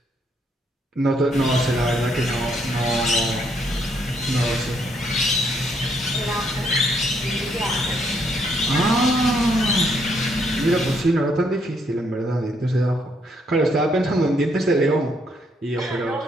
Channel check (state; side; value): normal; both; correlation 0.72